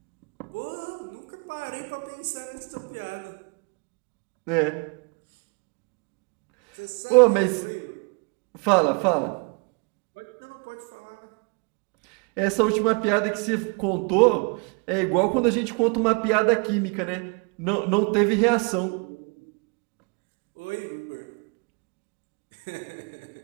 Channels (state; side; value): quieter; left; 34.3 dB